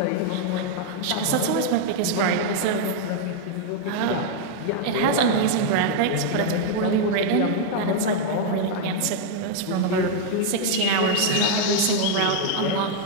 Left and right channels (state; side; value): different; both; correlation 0.00